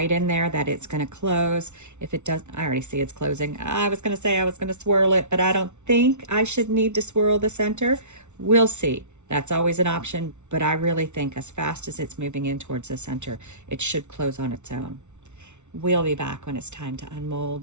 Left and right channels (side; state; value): left; late; 0.83 ms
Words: in there that it's going to close. If it doesn't, I already see it's closing. I was going to say I was going to swirl it, but I don't think I should need to swirl the center. We'll see. That's always an option, but I really think as fast as it's moving in towards the center, it should close on its own. We'll be back when it's time to